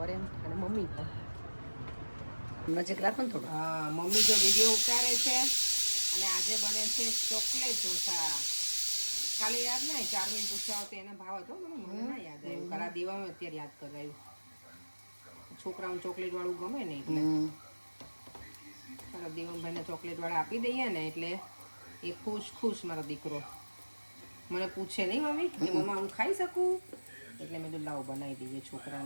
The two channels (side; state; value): both; inverted; correlation -1.00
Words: એમ, અને મમ્મી પણ નજીક રાખો ને થોડું. હા મમ્મી જો વિડીયો ઉતારે છે. અને આજે બને છે ચોકલેટ ઢોસા. કાલે યાદ નહીં ચાર્મિન પૂછ્યા હતો એને ભાવ હતો, મને ના યાદ આવ્યું. કાલા દેવામાં અત્યારે યાદ કરાયું. છોકરાઓને ચોકલેટ વાળું ગમે ને એટલે મારા દેવમભાઈને ચોકલેટ વાળા આપી દઈએ ને એટલે એ ખુશ મારો દીકરો. મને પૂછે નહીં મમ્મી કે મમ્મા હું ખાઈ શકું, એટલે મેં તો લાવ બનાવી દઈએ